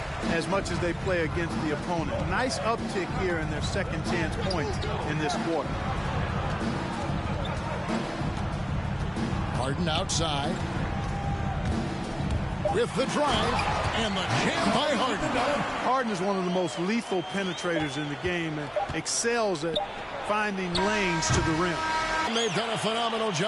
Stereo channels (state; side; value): identical; both; correlation 1.00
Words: as much as they play against the opponent. Nice uptick here in their second chance points in this quarter. Harden outside. With the drive and the jam by Harden. Harden is one of the most lethal penetrators in the game and excels at finding lanes to the rim. And they've done a phenomenal